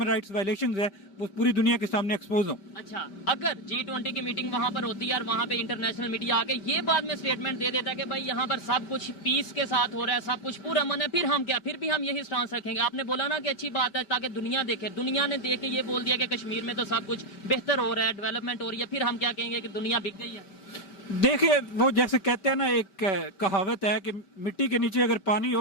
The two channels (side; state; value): right; late; 5.2 ms